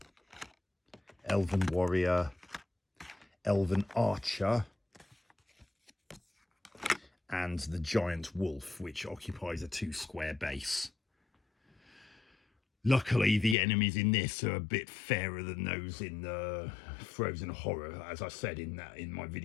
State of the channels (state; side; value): drops out; right; at 13.6 s